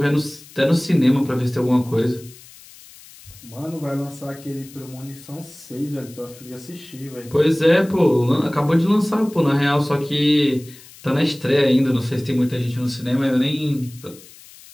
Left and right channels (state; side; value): noise; left; hiss, 21 dB below the sound